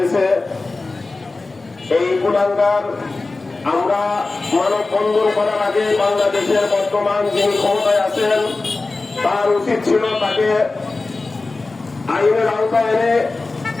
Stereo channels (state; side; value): quieter; right; 3.5 dB